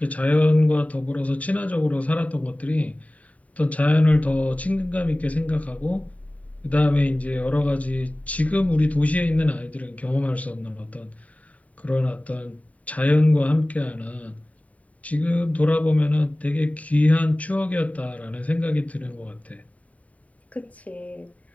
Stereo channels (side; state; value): right; late; 0.069 ms